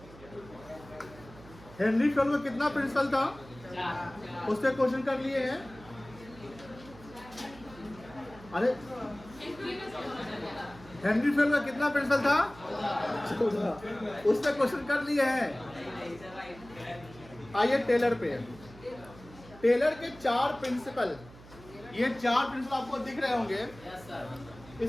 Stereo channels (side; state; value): right; noise; hum, 20 dB below the sound